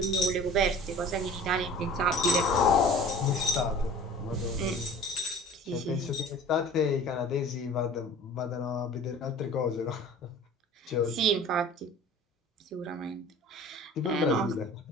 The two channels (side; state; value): both; normal; correlation 0.43